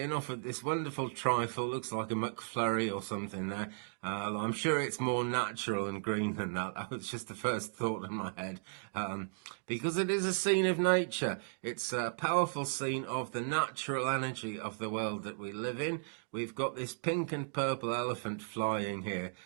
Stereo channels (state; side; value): silent; left; digital silence